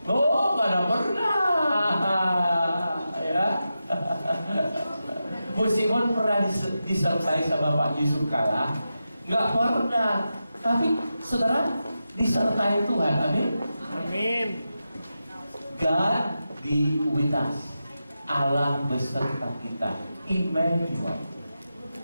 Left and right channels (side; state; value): both; inverted; correlation -0.90